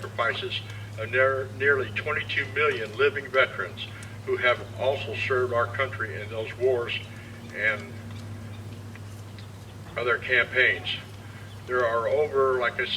of nearly 22 million living veterans who have also served our country in those wars and other campaigns. There are over, like I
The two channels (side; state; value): both; identical; correlation 1.00